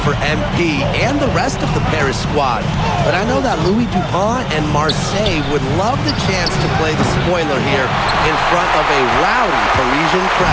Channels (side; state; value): both; identical; correlation 1.00